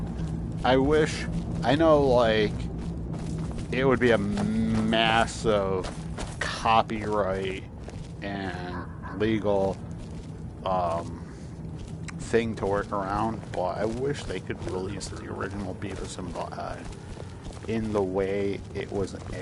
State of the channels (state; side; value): identical; both; correlation 1.00